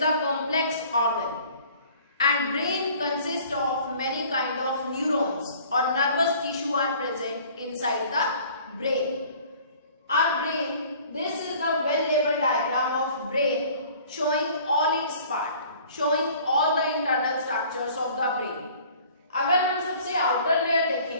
complex organ. And brain consists of many kind of neurons or nervous tissue are present inside the brain. Our brain, this is the well-labeled diagram of brain showing all its part, showing all the internal structures of the brain. अगर हम सबसे outer layer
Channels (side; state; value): both; inverted; correlation -0.51